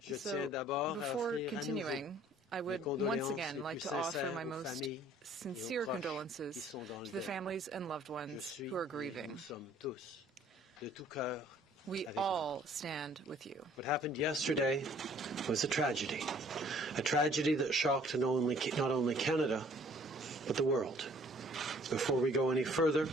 So, before continuing, I would once again like to offer my most sincere condolences to the families and loved ones who are grieving. We all stand with you. What happened yesterday was a tragedy that shocked not only Canada, but the world. Before we go any further,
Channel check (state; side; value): normal; both; correlation 0.57